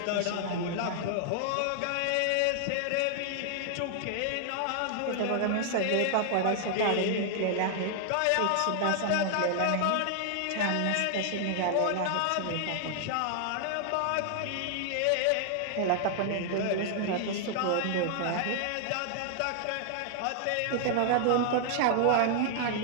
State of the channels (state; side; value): different; both; correlation 0.00